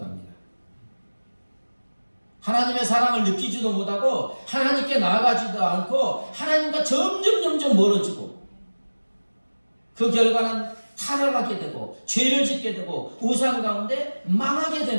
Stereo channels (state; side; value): inverted; both; correlation -1.00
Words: 하나님의 사랑을 느끼지도 못하고 하나님께 나아가지도 않고 하나님과 점점 멀어지고 그 결과는 타락하게 되고 죄를 짓게 되고 우상 가운데 망하게